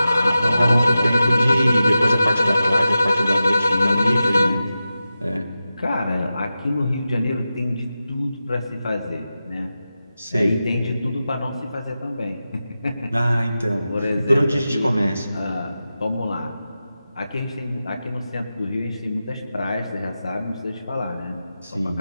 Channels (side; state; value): both; inverted; correlation -0.92